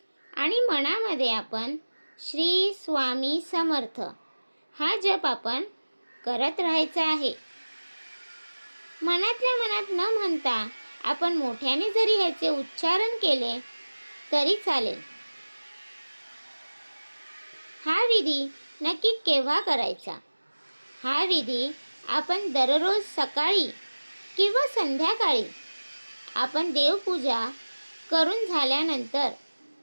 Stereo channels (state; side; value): inverted; both; correlation -1.00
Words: आणि मनामध्ये आपण श्री स्वामी समर्थ हा जप आपण करत राहायचा आहे. मनातल्या मनात न म्हणता आपण मोठ्याने जरी ह्याचे उच्चारण केले तरी चालेल. हा विधी नक्की केव्हा करायचा? हा विधी आपण दररोज सकाळी किंवा संध्याकाळी आपण देवपूजा करून झाल्यानंतर